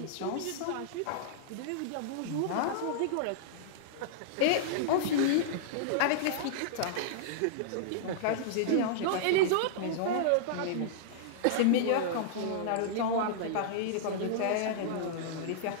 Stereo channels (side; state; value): both; different; correlation -0.02